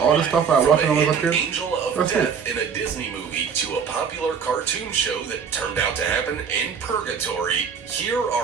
all the stuff I watched when I was a kid? Angel of Death in a Disney movie to a popular cartoon show that turned out to happen in purgatory, here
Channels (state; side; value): quieter; left; 6.6 dB